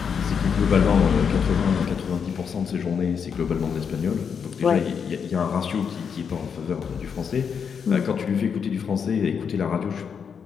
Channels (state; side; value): quieter; right; 6.8 dB